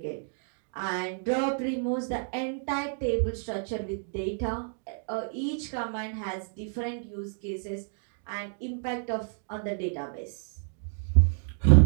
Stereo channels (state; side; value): silent; left; 56 dB below the other